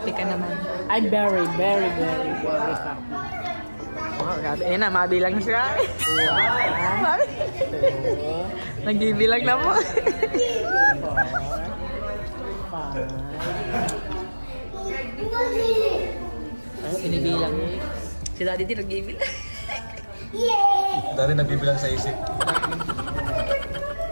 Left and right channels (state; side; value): inverted; both; correlation -1.00